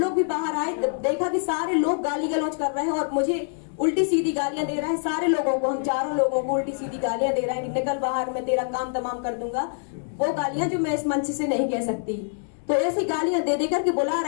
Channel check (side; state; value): right; silent; digital silence